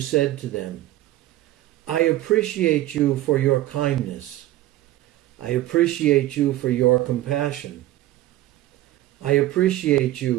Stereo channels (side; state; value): left; quieter; 15.2 dB